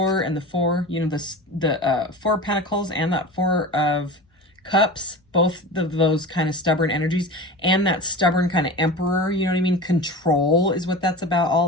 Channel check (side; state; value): both; normal; correlation 0.32